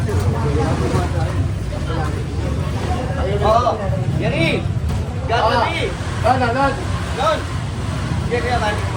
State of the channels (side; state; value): both; identical; correlation 1.00